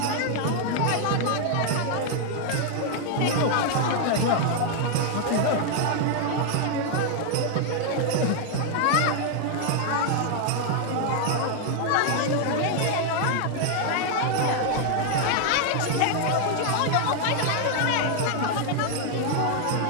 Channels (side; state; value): both; different; correlation 0.00